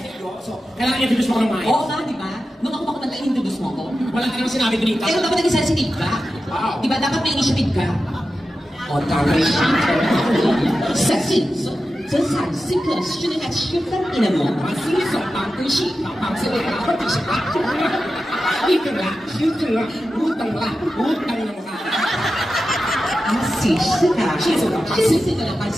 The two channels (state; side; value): normal; both; correlation 0.92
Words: ko. So, kailangan introduce mo ko ng maayos. Oo nga, di ba? Nung ako kumanta, introduce mo ko. Wala ka naman sinabi dito. Pero dapat naging sensitive ka. Wow. Di ba? Dapat may initiative ka. O, tama siya. Sexy. So, 这才是个训练吃饭的人嘛。是手当对手，当这个或者是啊，一等啦，一等啦，五等啦，五等了嘛。啊，是是啊，是是啊，是是个人嘛，